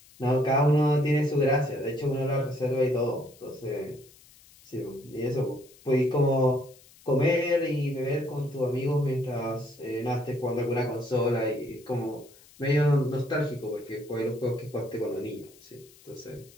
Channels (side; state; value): left; noise; hiss, 25 dB below the sound